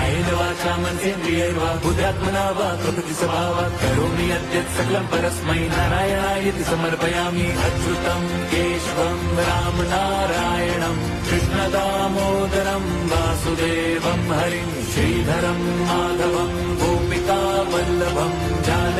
वाचा मनसेन्द्रियैर्वा बुद्ध्यात्मना वा प्रकृति स्वभावात् करोमि यद्यत् सकलं परस्मै नारायणायति समर्पयामि। अच्युतं केशवं राम नारायणं कृष्णदामोदरं वासुदेवं हरिं श्रीधरं माधवं गोपिका वल्लभं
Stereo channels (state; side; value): identical; both; correlation 1.00